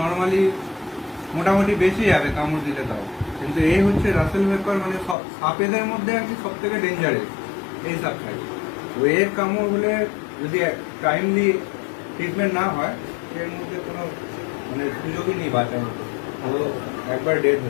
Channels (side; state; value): right; drops out; at 5.2 s